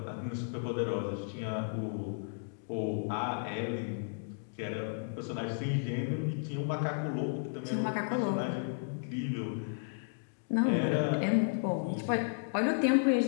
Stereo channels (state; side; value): silent; right; digital silence